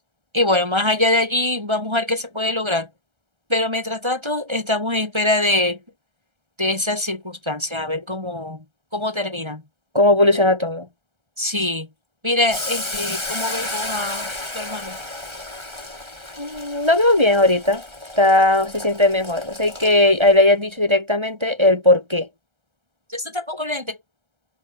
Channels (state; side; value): late; left; 1.3 ms